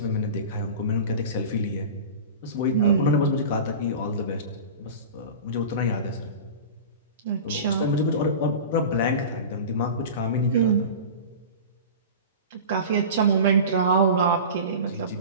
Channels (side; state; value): both; inverted; correlation -0.33